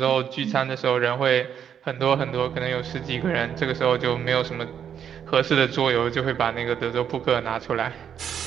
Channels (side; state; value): left; quieter; 8.5 dB